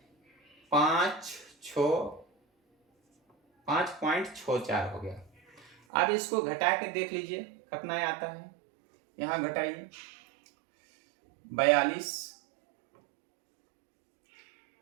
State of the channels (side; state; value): left; drops out; at 5.8 s